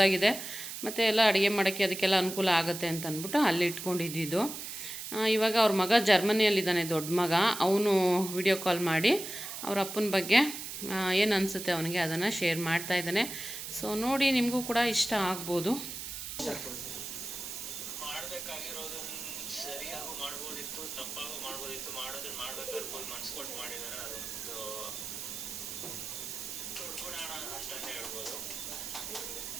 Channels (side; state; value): right; noise; hiss, 8 dB below the sound